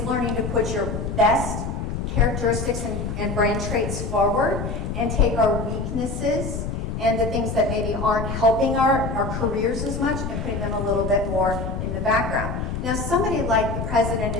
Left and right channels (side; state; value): left; noise; rumble, 4 dB below the sound